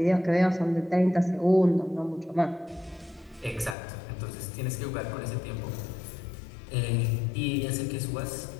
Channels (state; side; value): drops out; right; at 3.8 s